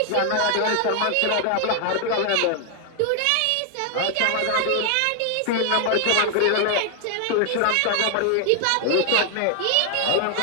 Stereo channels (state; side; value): different; both; correlation 0.00